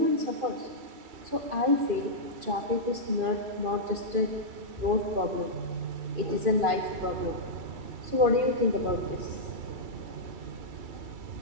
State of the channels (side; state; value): left; late; 2.4 ms